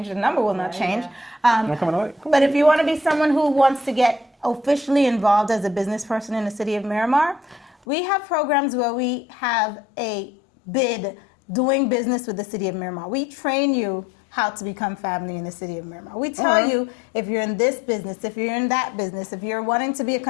The number will not change. You coming on? Cool. But if you want to be someone who wants to get officially involved as a business person in the city of Miramar, we have programs where we have a bid doing business with the city of Miramar. We train you how to become family in the city of Miramar. We tell you if you're in this business, if you're in that business, if you're wanting to be a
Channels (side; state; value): right; drops out; at 7.8 s